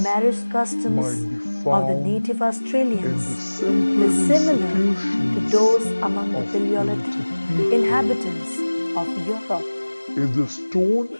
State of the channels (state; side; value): inverted; both; correlation -1.00